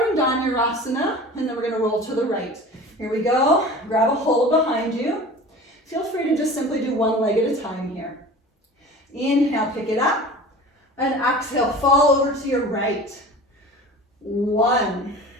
in Dhanurasana, and then we're going to roll to the right. Here we go. Grab a hold behind you. Feel free to just simply do one leg at a time here. Inhale, pick it up, and exhale, fall over to your right. 1.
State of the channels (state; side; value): normal; both; correlation 0.39